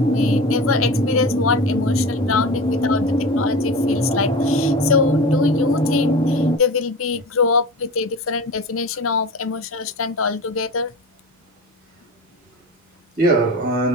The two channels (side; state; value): both; normal; correlation 0.31